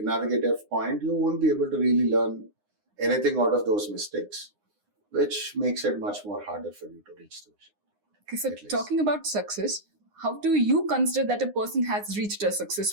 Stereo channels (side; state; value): left; late; 9.7 ms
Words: navigative point, you won't be able to really learn anything out of those mistakes, which makes it much more harder for you to reach the vision. Okay, so talking about success, how do you consider that a person has reached a